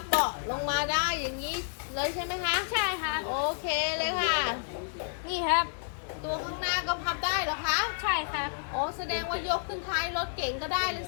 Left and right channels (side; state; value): right; silent; digital silence